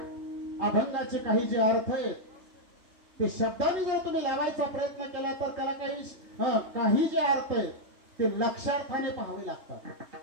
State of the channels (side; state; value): left; late; 3.3 ms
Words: अभंगाचे काही जे अर्थ आहेत ते शब्दाने जर तुम्ही लावायचा प्रयत्न केला तर त्याला काही जे अर्थ आहेत ते लक्षार्थाने पाहावे लागतात.